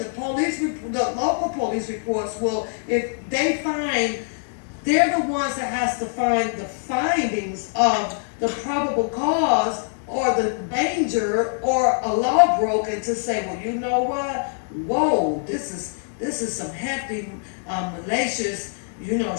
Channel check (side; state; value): right; silent; digital silence